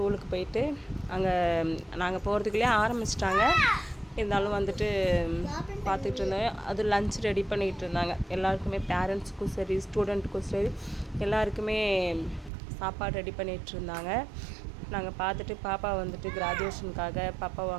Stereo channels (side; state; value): left; drops out; at 12.5 s